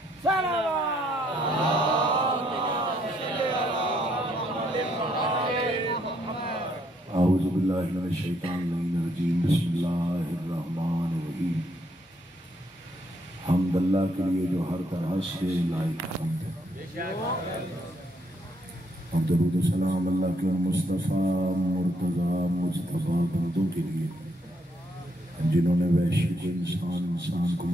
औज़ु बिल्लाहि मिनश शैतानिर रजीम बिस्मिल्लाहिर्रहमानिर्रहीम। हम्द अल्लाह के लिए जो हर तरह से लायक हम्द है। और दरूद सलाम अल्लाह के मुस्तफ़ा मुर्तज़ा मुस्तफ़ा बंदों के लिए जिन्होंने वैश्विक इंसान को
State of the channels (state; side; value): normal; both; correlation 0.72